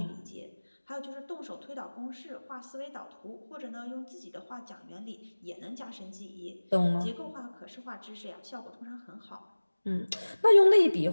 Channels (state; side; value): inverted; both; correlation -1.00